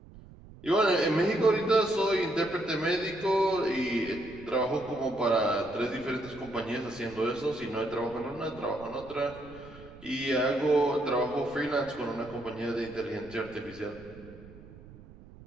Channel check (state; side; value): noise; right; rumble, 19 dB below the sound